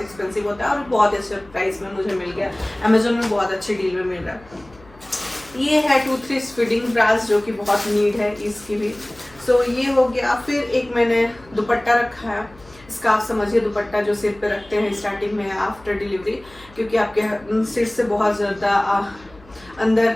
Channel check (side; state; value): left; noise; hum, 25 dB below the sound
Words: एक्सपेंसिव होता है और बहुत अच्छे प्राइस में मुझे मिल गया। अमेजोन में बहुत अच्छे डील में मिल रहा है। ये है 2-3 फीडिंग ब्रास जो कि बहुत नीड है इसकी भी। सो ये हो गया। फिर एक मैंने दुपट्टा रखा है, स्कार्फ समझिए, दुपट्टा जो सिर पे रखते हैं स्टार्टिंग में आफ्टर डिलीवरी, क्योंकि आपके सिर से बहुत ज़्यादा अंदर